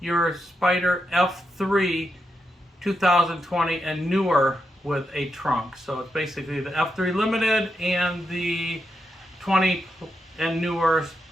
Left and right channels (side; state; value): both; normal; correlation 0.84